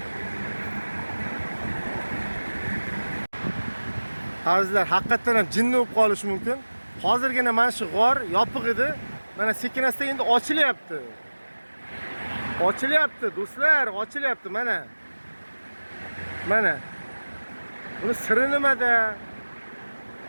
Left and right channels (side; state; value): both; inverted; correlation -1.00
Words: Azizlar, haqiqatan ham jinni bo'lib qolishi mumkin. Hozirgina mana shu g'or yopiq edi. Mana sekin-asta endi ochilyapti. Ochilyapti, do'stlar, ochilyapti mana. Mana. Buni siri nimada?